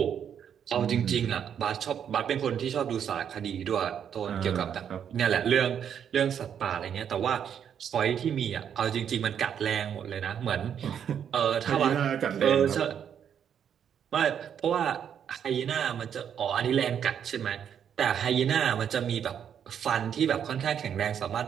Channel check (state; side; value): quieter; left; 8.5 dB